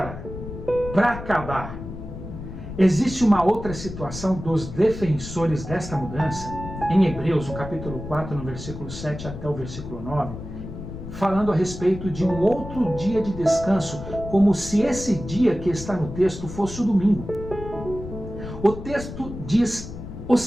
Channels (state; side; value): noise; left; rumble, 10 dB below the sound